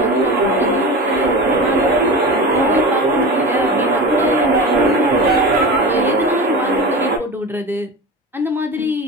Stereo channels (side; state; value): both; normal; correlation 0.28